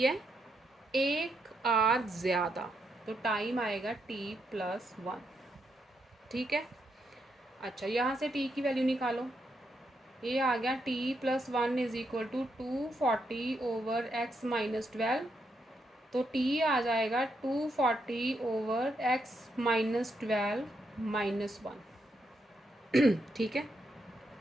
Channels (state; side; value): normal; both; correlation 0.80